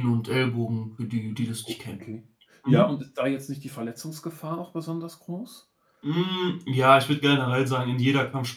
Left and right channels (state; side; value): identical; both; correlation 1.00